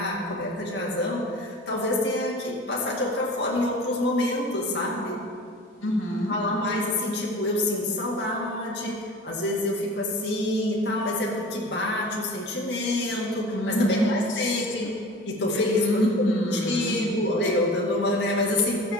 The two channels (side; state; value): both; normal; correlation 0.38